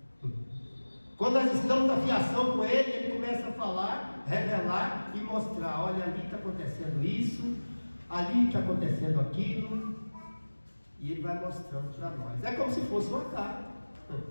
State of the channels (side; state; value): both; inverted; correlation -1.00